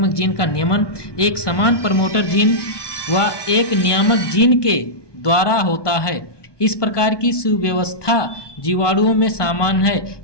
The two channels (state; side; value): late; right; 1.2 ms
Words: जीन का नियमन एक समान प्रमोटर जीन व एक नियामक जीन के द्वारा होता है। इस प्रकार की सुव्यवस्था जीवाणुओं में सामान्य है,